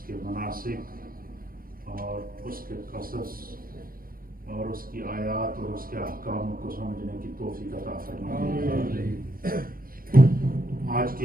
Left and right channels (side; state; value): left; late; 0.42 ms